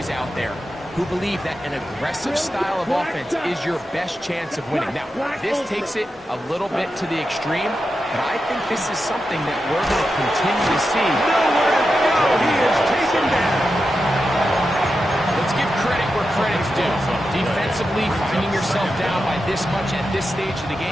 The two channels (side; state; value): both; normal; correlation 0.89